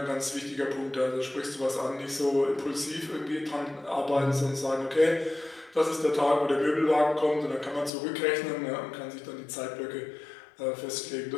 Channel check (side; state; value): right; drops out; at 7.9 s